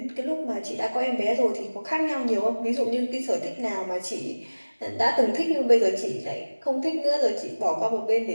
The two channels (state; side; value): inverted; both; correlation -1.00